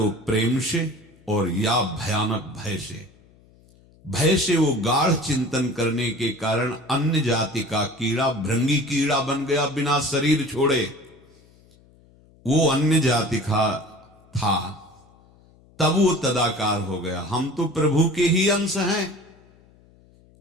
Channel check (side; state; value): left; noise; hum, 29 dB below the sound